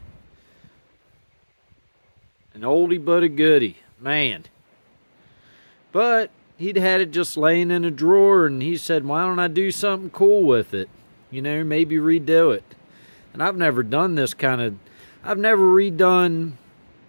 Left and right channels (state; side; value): inverted; both; correlation -1.00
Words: An oldie but a goodie, man. But he'd had it just laying in a drawer, and he said, why don't I do something cool with it? You know, maybe redo it. And I've never done this kind of, I've never redone